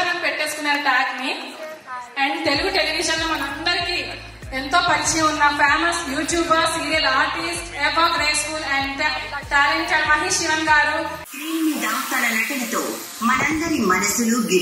అని పెట్టేసుకున్నారు ట్యాగ్ ని. అండ్ తెలుగు టెలివిజన్ లో మనందరికి ఎంతో పరిచయం ఉన్న famous youtuber, serial artist, ever graceful and talented Mahesh Sivan గారు స్క్రీన్ మీద తన నటనతో మనందరి మనసులు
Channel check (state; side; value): identical; both; correlation 1.00